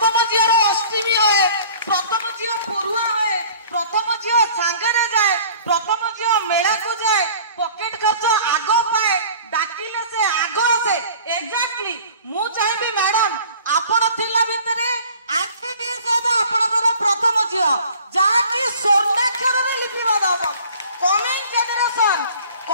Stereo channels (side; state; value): both; inverted; correlation -0.48